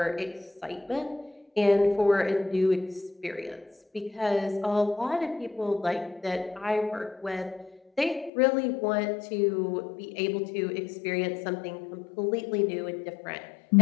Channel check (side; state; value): right; drops out; at 8.3 s